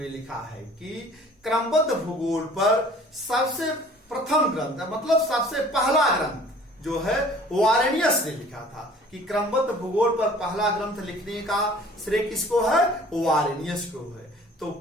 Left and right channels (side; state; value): both; normal; correlation 0.50